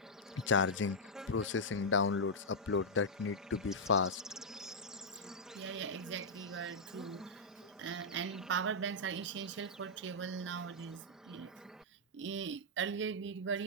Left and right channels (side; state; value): both; normal; correlation -0.07